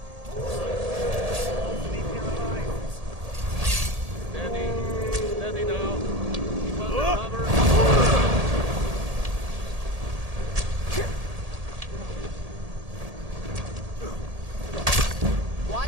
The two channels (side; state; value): left; late; 1.8 ms